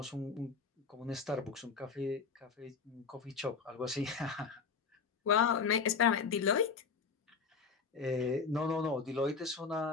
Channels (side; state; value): right; quieter; 5.4 dB